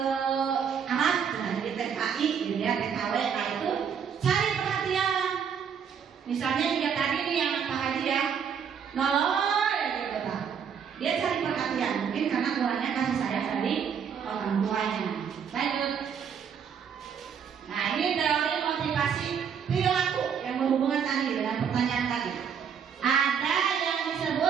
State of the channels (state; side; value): quieter; left; 7.4 dB